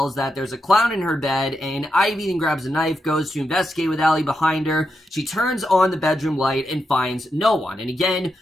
that there's a clown in her bed, and Ivy then grabs a knife, goes to investigate with Allie behind her. She turns on the bedroom light and finds no one. And again,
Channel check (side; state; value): both; normal; correlation 0.85